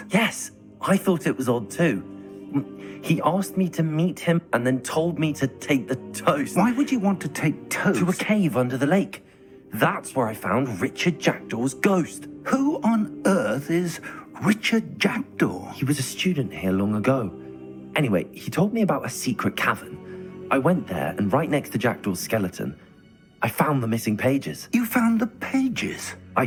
Yes, I thought it was odd too. He asked me to meet him and then told me to take the toast. Why would you want to take toast? To a cave under the lake. That's where I found Richard Jackdaw's ghost. Who on earth is Richard Jackdaw? He was a student here long ago. Anyway, he told me about a secret cavern. I went there, and right next to Jackdaw's skeleton, I found the missing pages. You found the pages? I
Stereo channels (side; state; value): both; identical; correlation 1.00